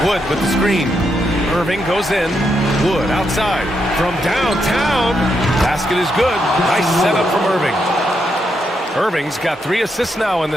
Wood with the screen. Irving goes in. Wood outside. From downtown. Basket is good. Nice setup from Irving. Irving's got 3 assists now in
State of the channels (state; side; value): normal; both; correlation 0.81